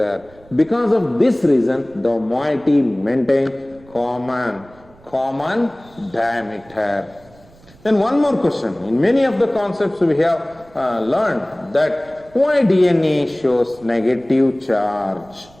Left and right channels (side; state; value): right; noise; rumble, 26 dB below the sound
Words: Because of this reason, the moiety maintains common diameter. Then one more question. In many of the concepts we have learned that why DNA shows negative charge?